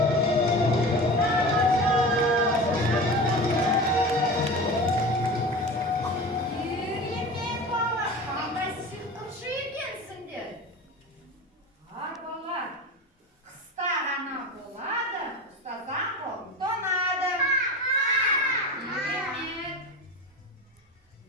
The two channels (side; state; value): both; normal; correlation 0.31